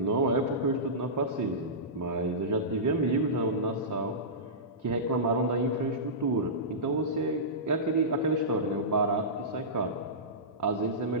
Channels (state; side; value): normal; both; correlation -0.19